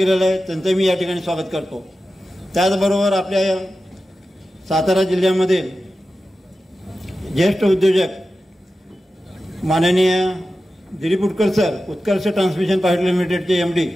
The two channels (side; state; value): both; normal; correlation 0.93